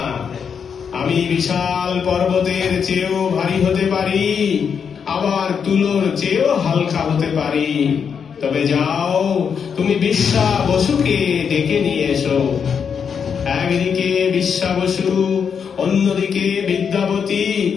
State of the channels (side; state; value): right; quieter; 6.8 dB